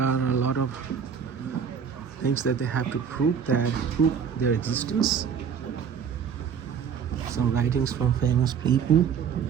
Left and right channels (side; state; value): left; quieter; 7.2 dB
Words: a lot of things that they have to prove their existence. Some writings from famous people.